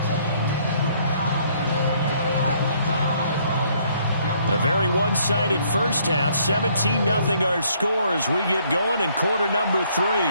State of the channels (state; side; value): inverted; both; correlation -0.65